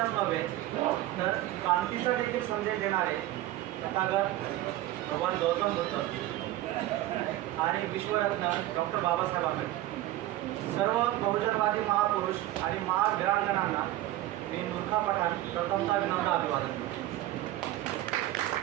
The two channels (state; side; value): quieter; left; 15.2 dB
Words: नव्हे तर क्रांतीचा देखील संदेश देणारे तथागत भगवान गौतम बुद्ध आणि विश्वरत्न डॉक्टर बाबासाहेब आंबेडकर सर्व बहुजनवादी महापुरुष आणि महावीरांगणांना मी मूर्खा पठाण प्रथमतः विनम्र अभिवादन करतो.